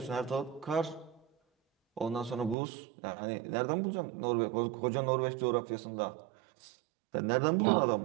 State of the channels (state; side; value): drops out; left; at 2.6 s